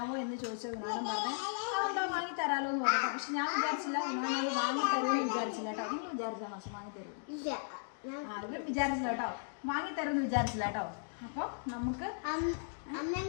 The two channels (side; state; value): right; silent; digital silence